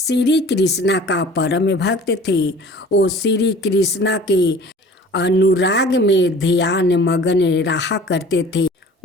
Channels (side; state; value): both; normal; correlation 0.46